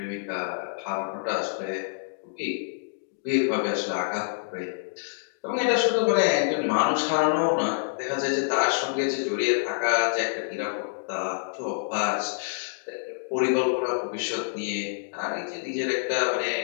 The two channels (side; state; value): right; silent; digital silence